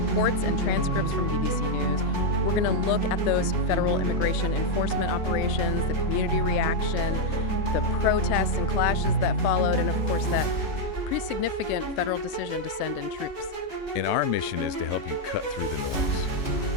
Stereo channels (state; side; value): late; right; 3.3 ms